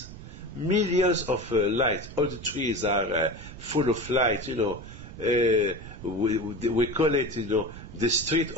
Millions of lights. All the trees are full of light, we call it, the street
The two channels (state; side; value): noise; right; rumble, 14 dB below the sound